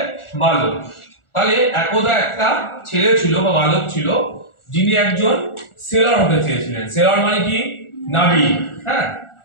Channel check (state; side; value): late; right; 1.4 ms